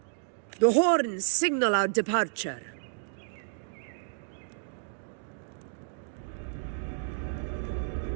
The horns signal our departure.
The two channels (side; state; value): left; silent; digital silence